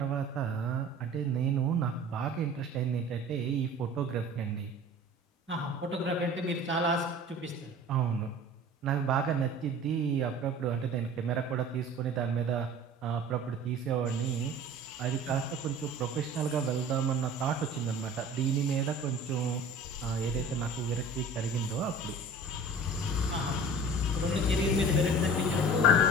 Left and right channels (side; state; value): both; normal; correlation 0.41